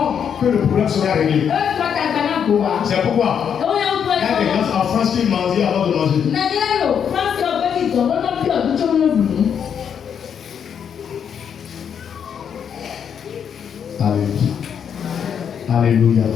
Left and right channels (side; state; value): right; quieter; 7.8 dB